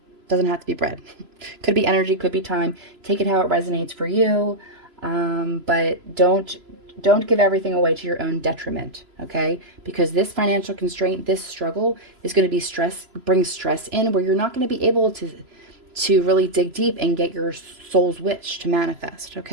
Doesn't have to be bread. Could be energy, could be time. Take it how it resonates for you. But don't give everything away to your own detriment, okay? Because this financial constraint, this struggle is going to be bring stress in where you're not going to be able to really dig deep and get your soul's wish to manifest,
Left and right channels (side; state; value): left; late; 3.0 ms